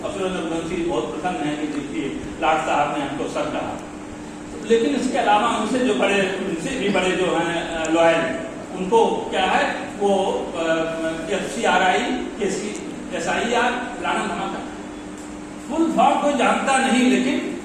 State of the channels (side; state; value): both; identical; correlation 1.00